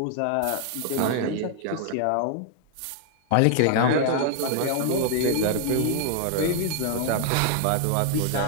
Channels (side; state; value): both; different; correlation 0.00